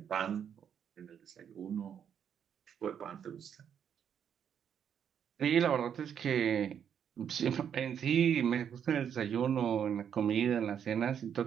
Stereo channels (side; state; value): left; quieter; 8.4 dB